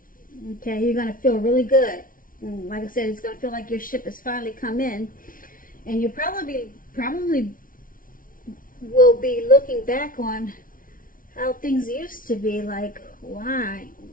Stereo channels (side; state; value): right; late; 0.40 ms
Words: Okay, you're going to feel really good. And like I said, it's going to feel like your ship has finally come in. And you probably will be looking back on how things used to be. Like, why